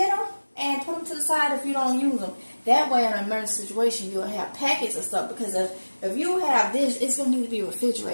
them and put them to the side if you don't use them. That way, in an emergency situation, you'll have packets of stuff. Because if you have this, it's going to need to be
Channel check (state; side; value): inverted; both; correlation -1.00